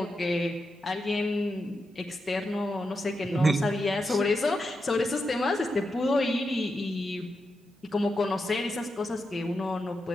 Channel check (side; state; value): both; normal; correlation 0.87